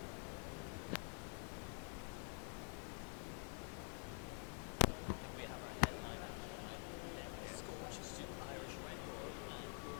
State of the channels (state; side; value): quieter; right; 39.4 dB